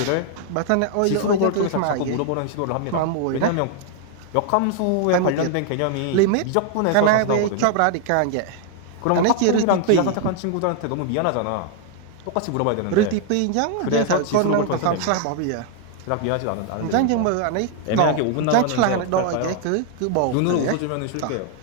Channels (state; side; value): different; both; correlation 0.00